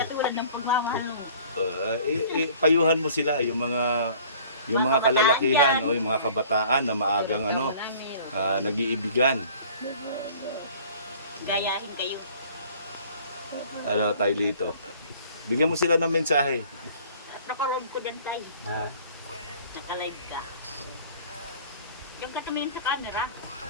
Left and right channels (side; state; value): both; inverted; correlation -0.50